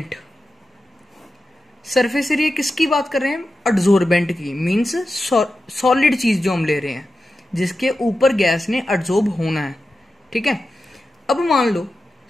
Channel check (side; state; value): both; normal; correlation 0.92